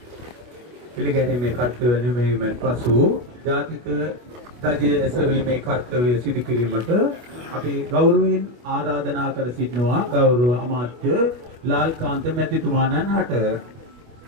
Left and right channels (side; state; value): left; late; 24 ms